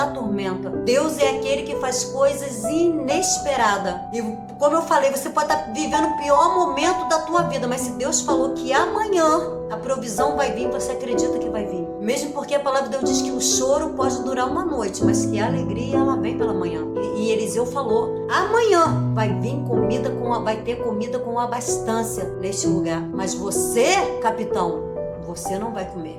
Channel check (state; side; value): identical; both; correlation 1.00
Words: tormenta. Deus é aquele que faz coisas inesperadas. E como eu falei, você pode estar vivendo o pior momento da tua vida, mas se Deus falou que amanhã a provisão vai vir, você acredita que vai vir. Mesmo porque a palavra de Deus diz que o choro pode durar uma noite, mas que a alegria ela vem pela manhã. E Eliseu falou: amanhã vai vir comida vai ter comida com abastância neste lugar. Mas você, capitão, você não vai